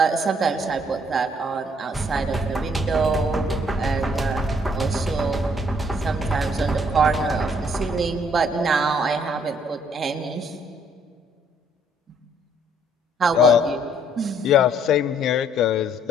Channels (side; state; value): both; normal; correlation 0.65